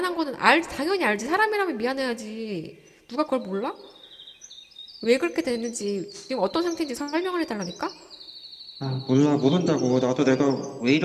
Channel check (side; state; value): both; identical; correlation 1.00